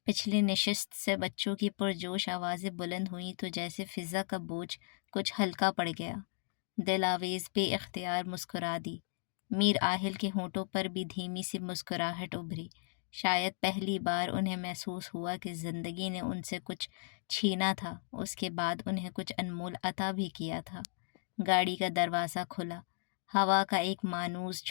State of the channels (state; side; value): silent; right; digital silence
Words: پچھلی نشست سے بچوں کی پرجوش آوازیں بلند ہوئیں تو جیسے فضا کا بوجھ کچھ ہلکا پڑ گیا۔ دل آویز بے اختیار مسکرا دی۔ میر آہل کے ہونٹوں پر بھی دھیمی سی مسکراہٹ ابھری۔ شاید پہلی بار انہیں محسوس ہوا کہ زندگی نے ان سے کچھ چھینا تھا، اس کے بعد انہیں کچھ انمول عطا بھی کیا تھا۔ گاڑی کا دروازہ کھلا، ہوا کا ایک مانوس